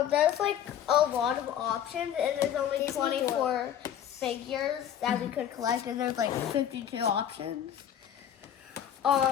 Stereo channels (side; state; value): right; quieter; 9.8 dB